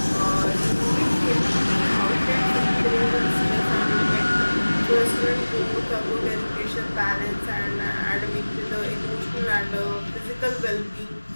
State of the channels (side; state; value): both; inverted; correlation -1.00